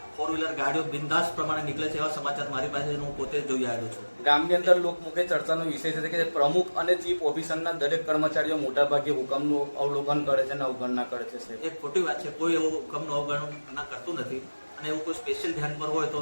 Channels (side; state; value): both; inverted; correlation -1.00